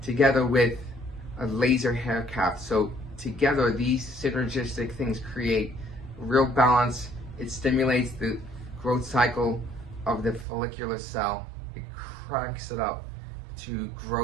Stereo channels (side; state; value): left; drops out; at 10.5 s